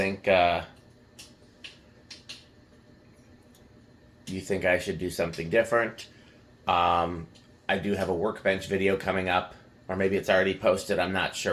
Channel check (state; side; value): identical; both; correlation 1.00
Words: I should do something different. I do have a workbench video coming up, or maybe it's already posted. I'm not